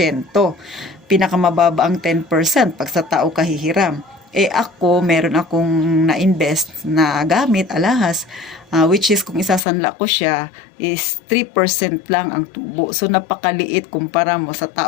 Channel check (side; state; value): right; drops out; at 9.6 s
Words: Pinakamababa ang 10% pag sa tao ka hihiram. Ako, meron akong na-invest na gamit, alahas, which is kung isasanla ko siya, is 3% lang ang tubo. So, napakaliit kumpara mo sa